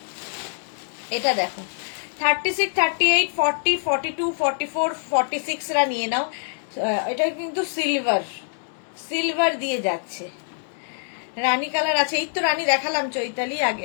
এটা দেখো 36, 38, 40, 42, 44, 46 রা নিয়ে নাও। এটা কিন্তু সিলভার দিয়ে যাচ্ছে, রানী কালার আছে। এই তো রানী দেখালাম চৈতালি,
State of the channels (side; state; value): right; silent; digital silence